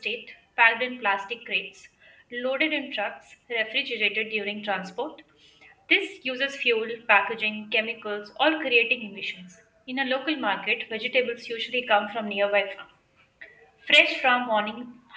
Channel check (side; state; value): both; identical; correlation 1.00